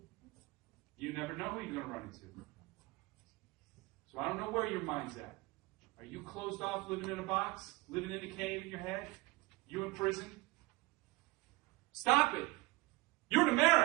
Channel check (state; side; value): quieter; left; 22.5 dB